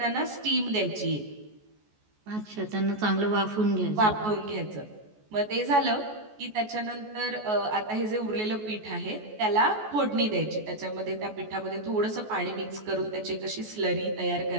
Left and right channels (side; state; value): left; late; 14 ms